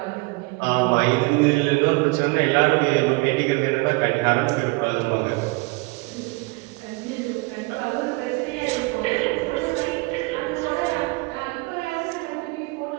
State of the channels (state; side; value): quieter; left; 26.0 dB